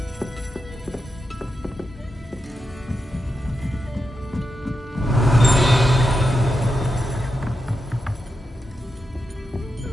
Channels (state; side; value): normal; both; correlation 0.87